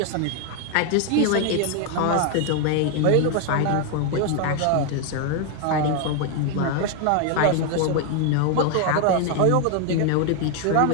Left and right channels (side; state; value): both; different; correlation 0.00